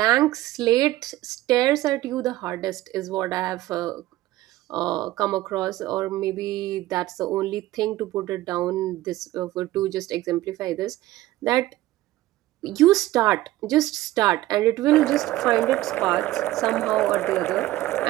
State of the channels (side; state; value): left; quieter; 16.2 dB